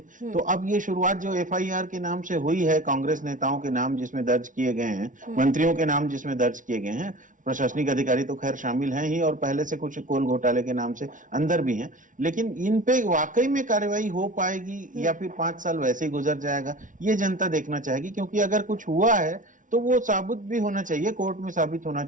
तो अब ये शुरुआत जो FIR के नाम से हुई है कांग्रेस नेताओं के नाम जिसमें दर्ज किए गए हैं, मंत्रियों के नाम जिसमें दर्ज किए गए हैं, प्रशासनिक अधिकारी तो खैर शामिल हैं ही और पहले से कुछ कोल घोटाले के नाम से अंदर भी हैं, लेकिन इन पे वाकई में कार्रवाई हो पाएगी या फिर 5 साल वैसे ही गुजर जाएगा, ये जनता देखना चाहेगी। क्योंकि अगर कुछ हुआ है तो वो साबित भी होना चाहिए, कोर्ट में साबित होना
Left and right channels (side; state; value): left; late; 0.38 ms